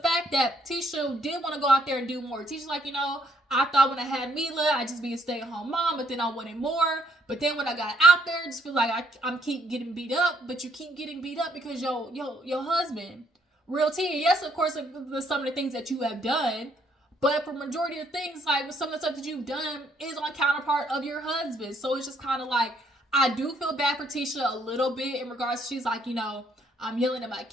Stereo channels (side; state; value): both; normal; correlation 0.69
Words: that Tisha did want to go out there and do more. Tisha's like, I thought when I had Mila, I'd just be a stay-at-home mom, but then I wanted more. But then when I got out there, I just feel like I'm keep getting beat up, but you keep getting beat up because your husband. Real tea. Yes, of course, some of the things that you have done, but for majority of things, like some of the stuff that you've done is on counterpart of your husband. So it's just kind of like, I do feel bad for Tisha a little bit in regards to, she's like, I'm yelling at my